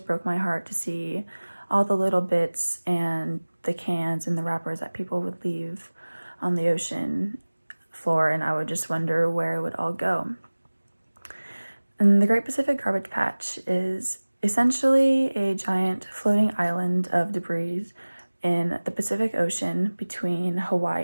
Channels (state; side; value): inverted; both; correlation -1.00